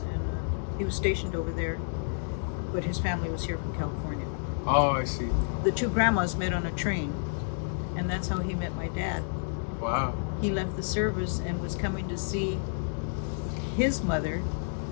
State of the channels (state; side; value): silent; right; digital silence